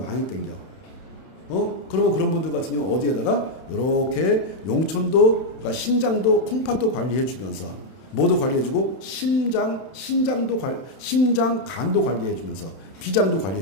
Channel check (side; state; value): right; late; 31 ms